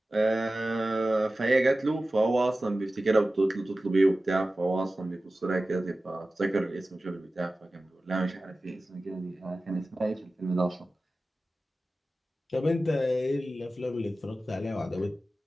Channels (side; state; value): both; normal; correlation 0.95